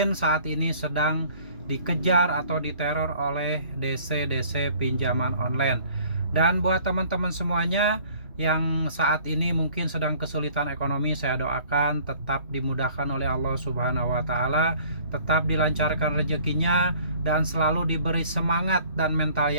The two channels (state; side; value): inverted; both; correlation -0.53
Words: saat ini sedang dikejar atau diteror oleh DC-DC pinjaman online. Dan buat teman-teman semuanya yang saat ini mungkin sedang kesulitan ekonomi, saya doakan tetap dimudahkan oleh Allah Subhanahu wa taala, tetap dilancarkan rezekinya dan selalu diberi semangat dan mental